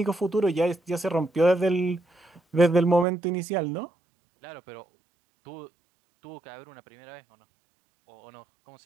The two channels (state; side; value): drops out; left; at 3.1 s